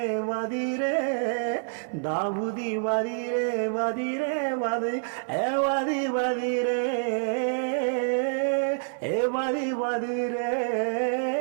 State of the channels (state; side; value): silent; left; 60 dB below the other